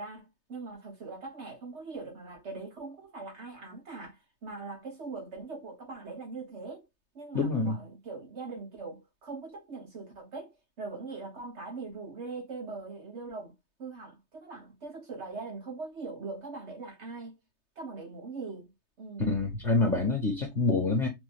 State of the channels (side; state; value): left; late; 3.3 ms